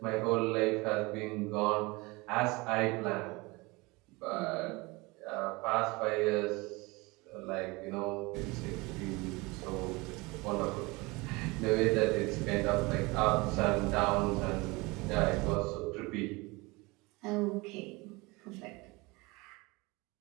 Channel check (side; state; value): left; quieter; 24.4 dB